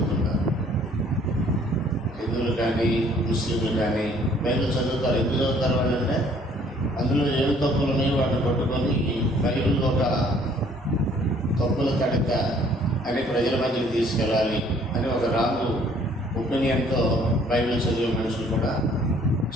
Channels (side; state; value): both; normal; correlation 0.59